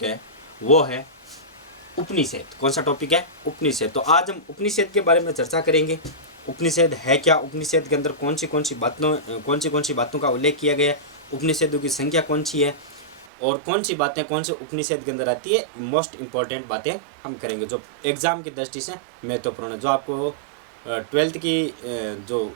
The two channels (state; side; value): drops out; left; at 13.2 s